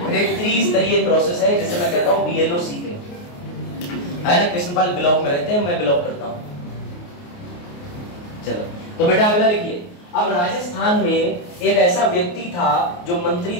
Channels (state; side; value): late; right; 28 ms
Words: एक 30 स्तरीय प्रोसेस है जिसे मैं कहता हूँ BLO सीखे, है ना। कृष्णपाल ब्लॉक में रहते हैं, मैं ब्लॉक करता हूँ। चलो तो बेटा अगला लिखिए। अब राजस्थान में एक ऐसा व्यक्ति था जो मंत्री